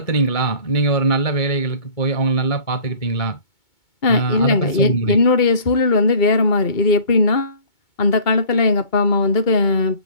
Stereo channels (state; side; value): late; right; 2.2 ms